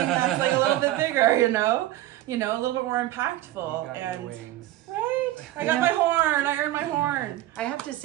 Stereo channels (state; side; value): quieter; left; 14.9 dB